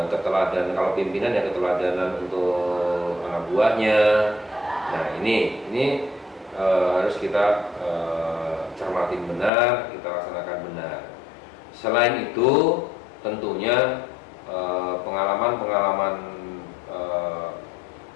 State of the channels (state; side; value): drops out; right; at 9.5 s